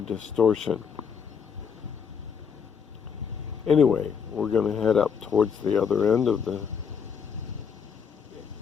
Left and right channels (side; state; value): right; quieter; 6.7 dB